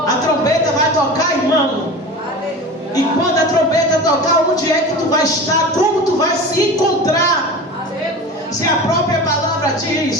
A trombeta vai tocar, irmão. E quando a trombeta tocar, onde é que tu vai estar? Como tu vai se encontrar? Se a própria palavra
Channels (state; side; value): normal; both; correlation 0.33